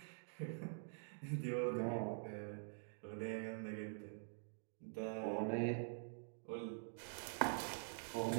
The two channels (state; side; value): silent; left; digital silence